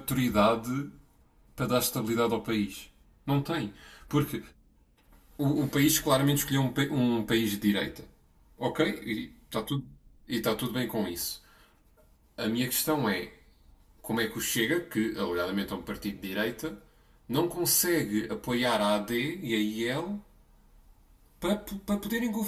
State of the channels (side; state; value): both; identical; correlation 1.00